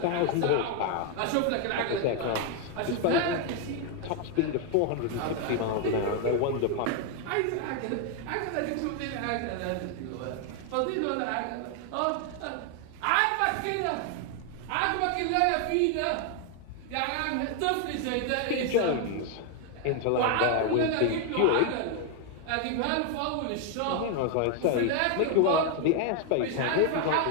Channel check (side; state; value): both; different; correlation 0.01